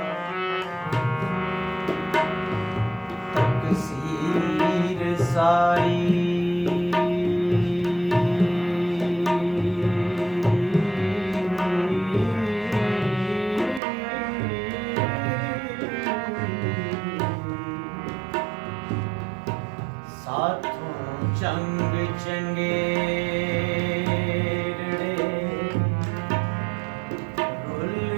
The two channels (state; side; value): drops out; left; at 13.8 s